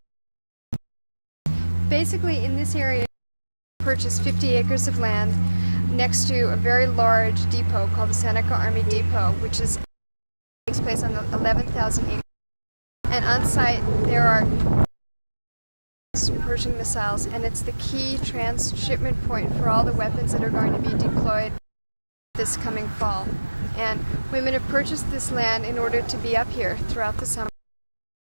Basically, in this area, I purchased 50 acres of land next to a very large depot called the Seneca Army Depot, which takes place on the 11,000 acres. And on site, there are Persian missiles, and it's the key transshipment point for all the weapons that are going to be deployed this coming fall. And women have purchased this land in order to be up here throughout the summer,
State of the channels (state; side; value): inverted; both; correlation -1.00